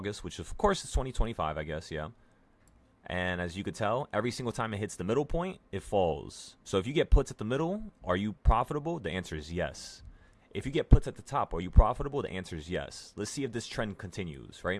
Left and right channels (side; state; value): both; identical; correlation 1.00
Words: which of course is 2025, I guess, yeah. And as you could tell, every single time it hits the middle point, it falls. So if you get puts at the middle, are you profitable? The answer is yes. If you get puts at the top, are you profitable? The answer is yes. Let's see if this trend continues,